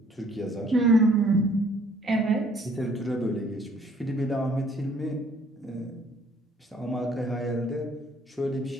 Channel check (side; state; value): both; normal; correlation 0.60